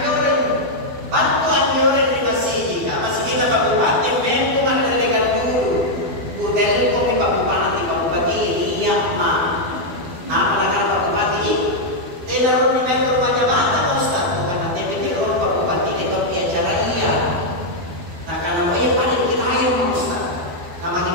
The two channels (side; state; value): left; late; 12 ms